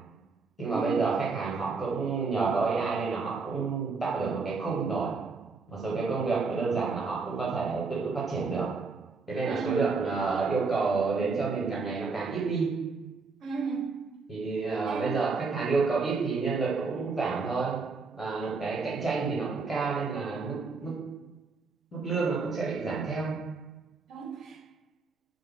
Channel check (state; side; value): quieter; left; 4.4 dB